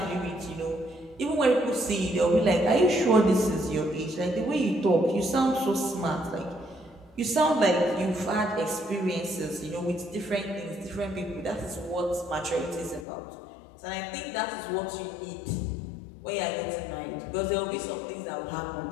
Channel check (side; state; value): right; drops out; at 13.1 s